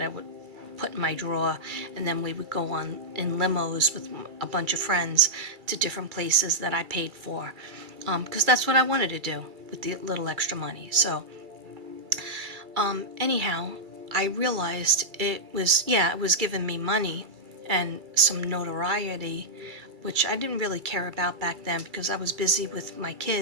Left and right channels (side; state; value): left; late; 2.3 ms